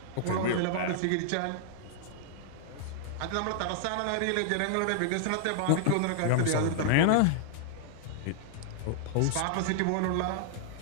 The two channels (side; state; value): both; different; correlation -0.01